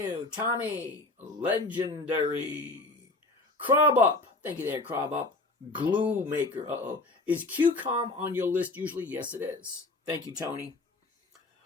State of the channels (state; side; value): quieter; right; 3.1 dB